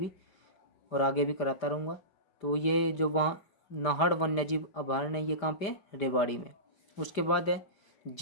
और आगे भी कराता रहूँगा। तो ये जो वहाँ नाहड़ वन्य जीव अभयारण्य ये कहाँ पे है, रेवाड़ी में। उसके बाद है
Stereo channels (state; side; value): late; right; 5.0 ms